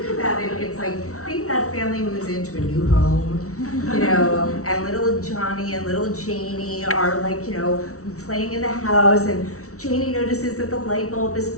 about it, it's like, think that family moves into a new home, and little Johnny and little Janie are like, playing in the house, and Janie notices that the light bulb is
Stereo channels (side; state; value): right; late; 0.64 ms